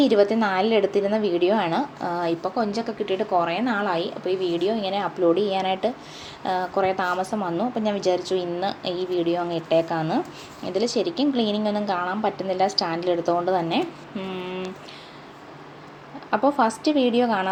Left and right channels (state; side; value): identical; both; correlation 1.00